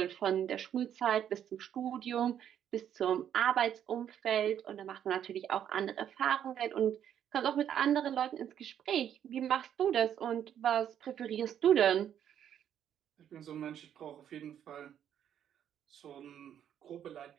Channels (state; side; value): quieter; left; 9.7 dB